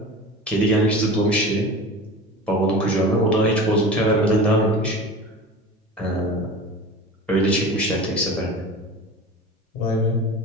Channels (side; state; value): both; normal; correlation 0.34